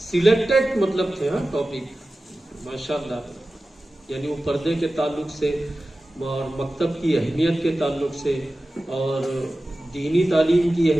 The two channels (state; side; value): normal; both; correlation 0.95